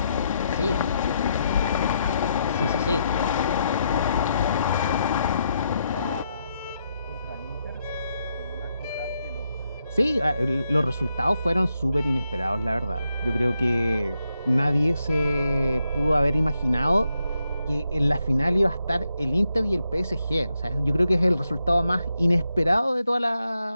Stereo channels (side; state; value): both; inverted; correlation -0.81